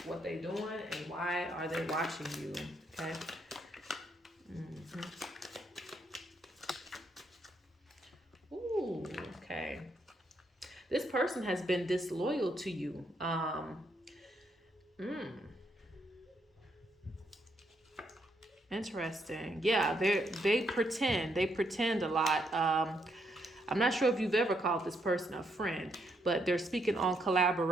what they doing and why are they watching you, okay? Okay. This person has been disloyal to you. Interesting. Yeah, they pretend a lot. I'm not sure if you've ever called this person a friend, but they're speaking on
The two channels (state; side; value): normal; both; correlation 0.75